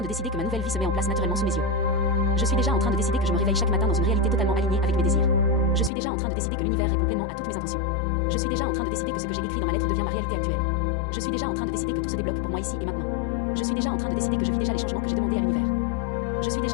de décider que ma nouvelle vie se met en place naturellement sous mes yeux. Je suis déjà en train de décider que je me réveille chaque matin dans une réalité totalement alignée avec mes désirs. Je suis déjà en train de décider que l'univers répond pleinement à toutes mes intentions. Je suis déjà en train de décider que ce que j'ai écrit dans ma lettre devient ma réalité actuelle. Je suis déjà en train de décider que tout se débloque pour moi ici et maintenant. Je suis déjà en train de décider que je vis déjà les changements que j'ai demandés à l'univers. Je suis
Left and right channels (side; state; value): right; drops out; at 5.9 s